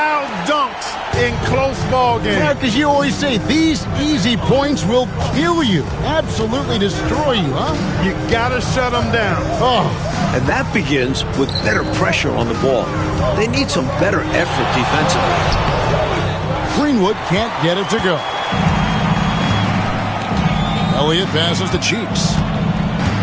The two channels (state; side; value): identical; both; correlation 1.00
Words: dunks in close ball games. Yeah, because you always say these easy points will kill you. Absolutely destroy you, huh? You got to shut them down. Oh. And that begins with better pressure on the ball. They need some better effort defensively. Greenwood can't get it to go. Elliott passes to Cheeks.